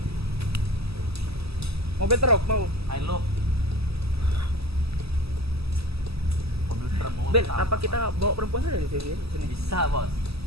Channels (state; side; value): late; left; 0.78 ms